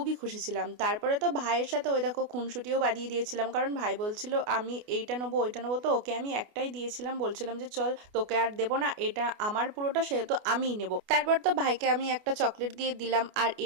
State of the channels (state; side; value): late; left; 28 ms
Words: খুশি ছিলাম। তারপরে তো ভাইয়ের সাথে ওই দেখো খুনসুটিও বাঁধিয়ে দিয়েছিলাম, কারণ ভাই বলছিল আমি এইটা নেবো ওইটা নেবো, তো ওকে আমি একটাই দিয়েছিলাম, বলছিলাম যে চল তোকে আর দেবো না, এটা আমার পুরোটা সেহেতু আমিই নেবো। তারপর তো ভাইকে আমি একটা চকলেট দিয়ে দিলাম। আর